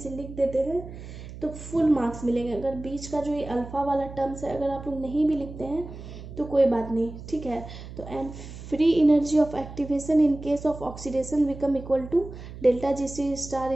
लिख देते हैं तो फुल मार्क्स मिलेंगे। अगर बीच का जो ये अल्फ़ा वाला टर्म्स है अगर आप लोग नहीं भी लिखते हैं तो कोई बात नहीं, ठीक है। तो and free energy of activation in case of oxidation become equal to delta G C star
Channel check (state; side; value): noise; right; hum, 13 dB below the sound